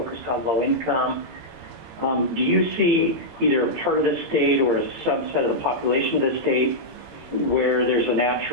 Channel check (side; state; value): left; late; 17 ms